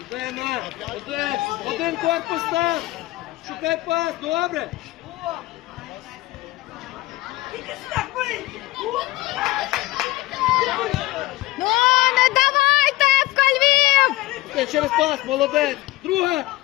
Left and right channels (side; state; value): right; quieter; 18.8 dB